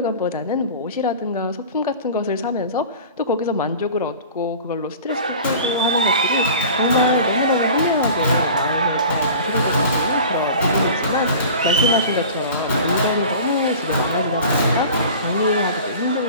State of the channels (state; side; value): inverted; both; correlation -0.40